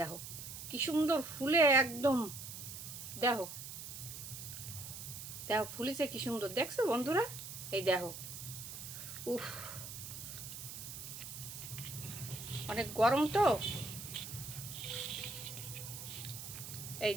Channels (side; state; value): right; noise; hiss, 9 dB below the sound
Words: কি সুন্দর ফুলে একদম, দেখো দেখো ফুলিছে কি সুন্দর, দেখছো বন্ধুরা? এই দেখো, উফ অনেক গরম তো, এই